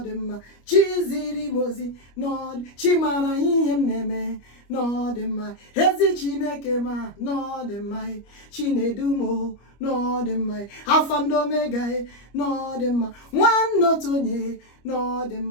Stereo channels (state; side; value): late; right; 25 ms